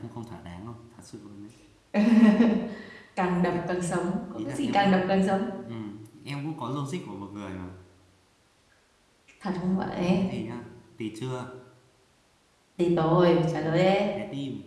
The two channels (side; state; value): both; identical; correlation 1.00